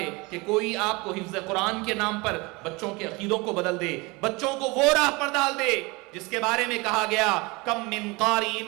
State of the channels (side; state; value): left; quieter; 25.4 dB